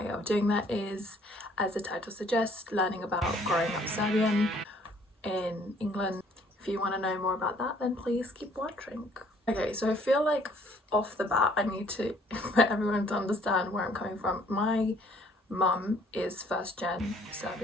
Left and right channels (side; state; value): both; normal; correlation 0.60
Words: of doing that is, as the title suggests, learning about growing up Serbian in England. If you want to know more about that, then please keep watching. Okay, so I feel like off the bat I need to for everyone to understand where I'm coming from. My mum is first gen